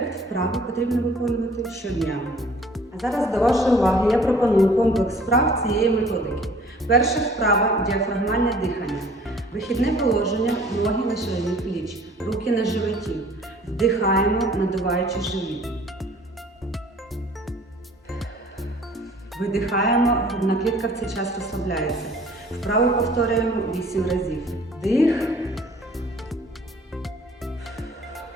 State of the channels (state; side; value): normal; both; correlation 0.52